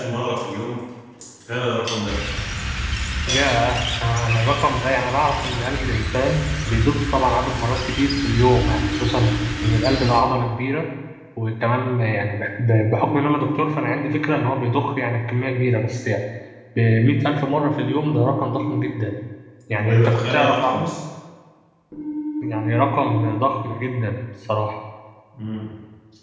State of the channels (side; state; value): both; identical; correlation 1.00